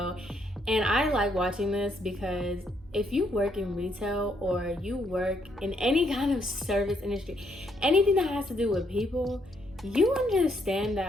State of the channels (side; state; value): both; normal; correlation 0.73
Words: And I like watching this because if you work in retail or you work in any kind of service industry, anything that has to do with people, you understand